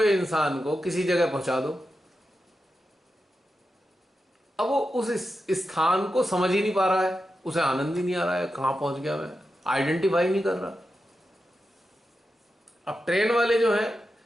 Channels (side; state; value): both; normal; correlation 0.89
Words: इंसान को किसी जगह पहुंचा दो, अब वो उस स्थान को समझ ही नहीं पा रहा है, उसे आनंद ही नहीं आ रहा है, कहां पहुंच गया मैं, आइडेंटिफाई नहीं कर रहा। अब ट्रेन वाले जो है,